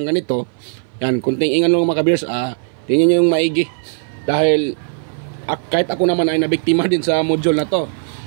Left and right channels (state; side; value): silent; left; 58 dB below the other